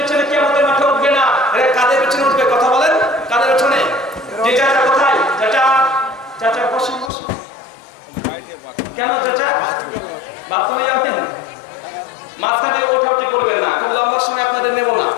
কিয়ামতের মাঠে উঠবে না। এরা কাদের পিছনে উঠবে? কথা বলেন, কাদের পিছনে? যে চাচা কোথায়? চাচা, চাচা বসুন বসুন। কেন চাচা? বাথরুমে যাবেন? মাঝখানে ওঠাউঠি করবেন না, খুব লম্বা সময় আপনাদের নেব না।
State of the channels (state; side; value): drops out; right; at 7.1 s